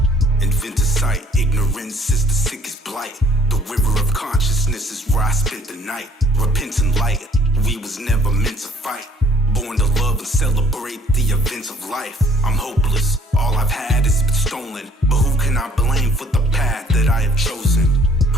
Invented sight, ignorance is the sickest blight. The river of consciousness is where I spent the night. Repentant light, we was never meant to fight. Born to love and celebrate the events of life. I'm hopeless, all I've had has been stolen. But who can I blame for the path that I have chosen?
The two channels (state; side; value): normal; both; correlation 0.55